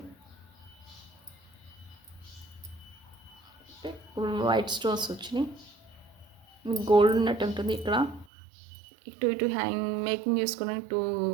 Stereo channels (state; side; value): drops out; left; at 8.2 s